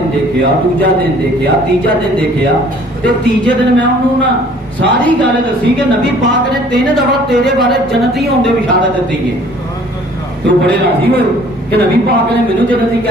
دیکھیا, دوجا دن دیکھیا, تیجا دن دیکھیا, تے تیجے دن میں انہوں نا ساری گل دسی کہ نبی پاک نے 3 دفعہ تیرے بارے جنتی ہونے کی بشارت دیتی ہے. تو بڑے راضی ہوئے کہ نبی پاک نے مینوں جنتی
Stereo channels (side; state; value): both; normal; correlation 0.55